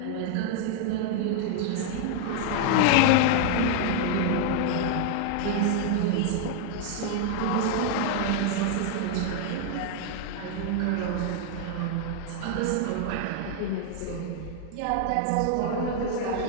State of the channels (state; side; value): different; both; correlation 0.00